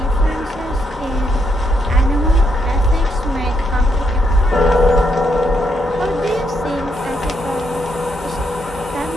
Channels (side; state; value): both; normal; correlation 0.77